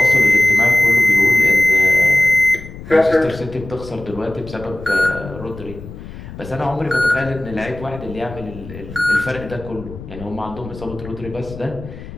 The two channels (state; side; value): noise; left; rumble, 14 dB below the sound